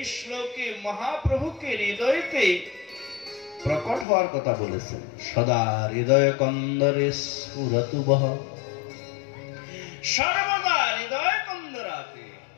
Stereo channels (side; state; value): right; drops out; at 4.0 s